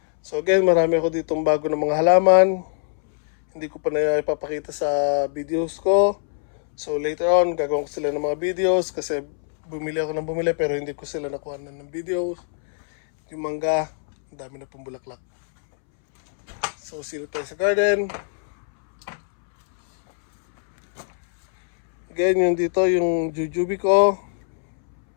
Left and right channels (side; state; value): right; silent; 64 dB below the other